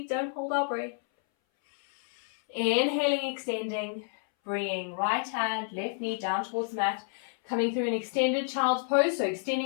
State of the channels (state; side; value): silent; right; 58 dB below the other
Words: Don't hold our breath. Inhaling, extending, bringing right hand, left knee down towards the mat, coming through an extended child's pose, so